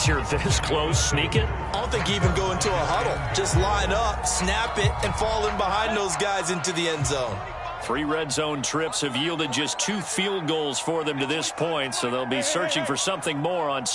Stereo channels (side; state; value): both; identical; correlation 1.00